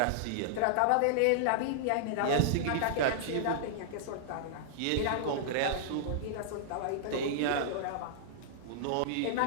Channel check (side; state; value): both; different; correlation -0.01